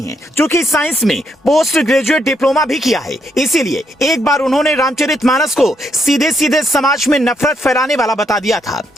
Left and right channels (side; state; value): both; normal; correlation 0.76